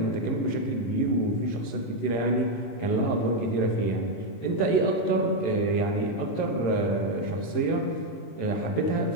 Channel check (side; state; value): right; late; 18 ms